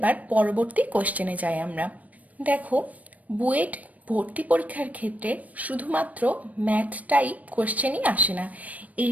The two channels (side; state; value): left; late; 0.071 ms